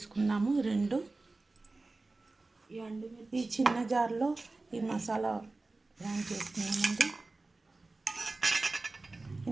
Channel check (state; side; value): quieter; left; 3.3 dB